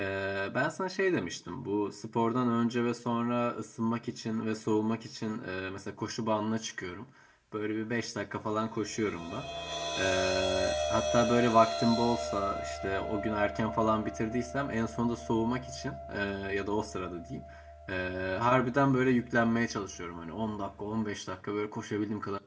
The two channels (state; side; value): identical; both; correlation 1.00